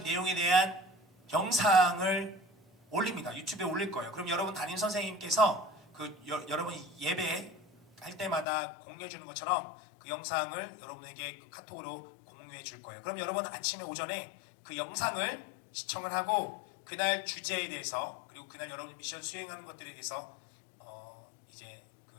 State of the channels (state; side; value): drops out; right; at 8.5 s